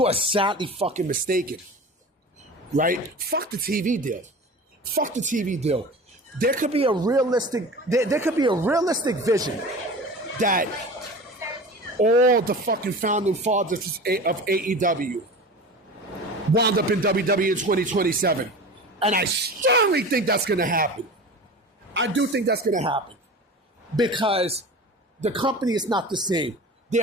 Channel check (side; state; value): both; normal; correlation 0.35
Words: are sadly fucking mistaken, right? Fuck the TV deal. Fuck the TV deal. There could be a realistic vision that all the fucking founding fathers of AEW wound up in WWE in 2027. And I strongly think that's going to happen. I do think that's going to happen. Because the company is not the same.